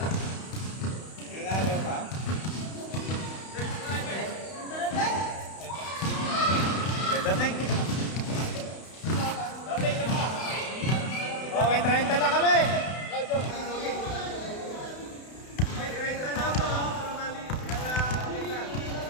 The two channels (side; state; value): right; late; 32 ms